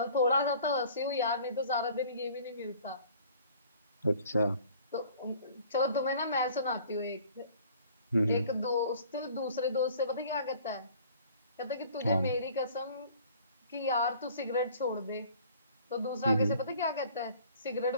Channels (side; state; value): both; inverted; correlation -0.52